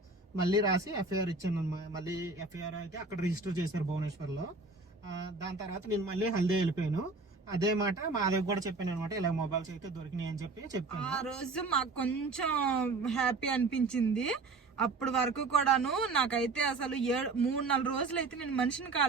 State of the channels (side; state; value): left; quieter; 3.7 dB